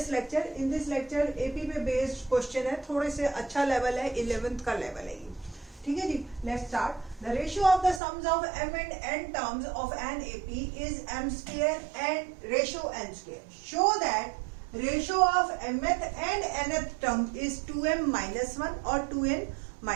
lecture. In this lecture AP पे बेस्ड क्वेश्चन है, थोड़े से अच्छा लेवल है, 11th का लेवल है ये। ठीक है जी, let's start. The ratio of the sums of m and n terms of an AP is m square and ratio n square. Show that ratio of mth and nth term is 2m minus 1 और 2n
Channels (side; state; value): left; drops out; at 8.0 s